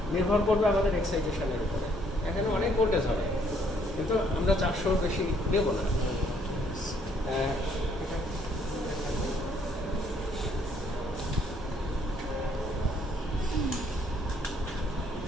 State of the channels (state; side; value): normal; both; correlation 0.66